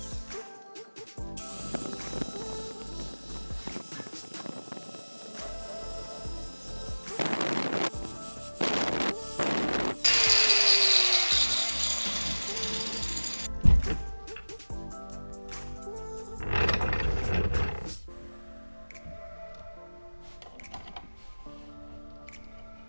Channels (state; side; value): inverted; both; correlation -1.00